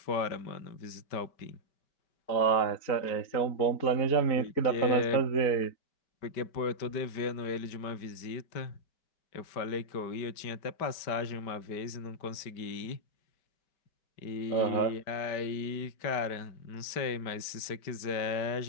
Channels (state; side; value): late; right; 5.1 ms